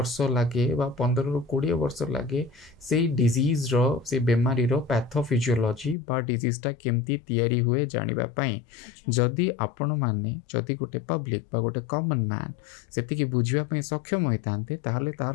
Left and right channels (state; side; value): drops out; right; at 6.0 s